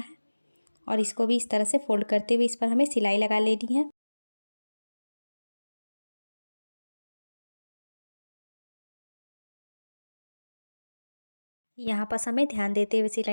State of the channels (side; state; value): both; inverted; correlation -1.00